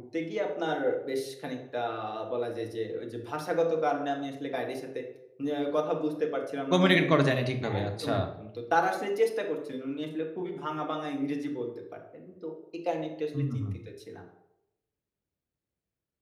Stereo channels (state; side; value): identical; both; correlation 1.00